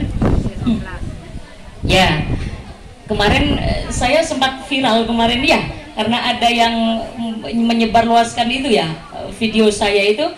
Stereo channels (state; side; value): identical; both; correlation 1.00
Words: Ya, kemarin saya sempat viral kemarin ya, karena ada yang menyebarluaskan itu ya, video saya itu.